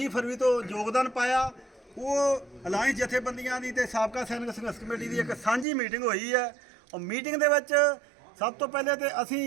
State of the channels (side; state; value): left; drops out; at 5.7 s